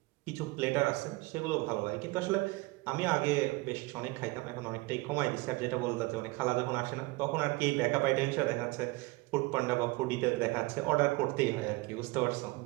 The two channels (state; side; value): quieter; left; 23.2 dB